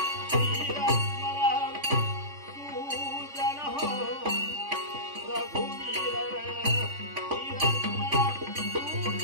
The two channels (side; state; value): left; late; 3.5 ms